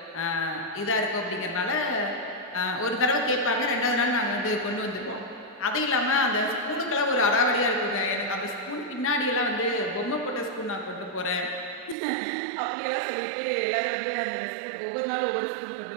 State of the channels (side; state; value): left; drops out; at 12.0 s